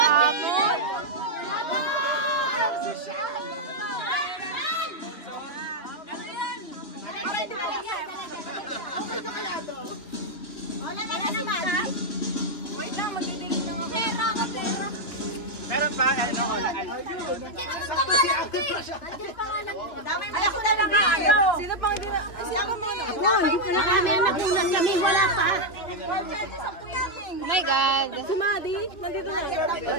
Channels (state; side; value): late; right; 2.9 ms